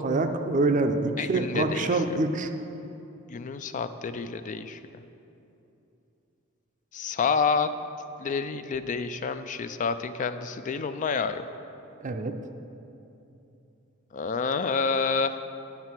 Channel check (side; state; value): both; normal; correlation 0.11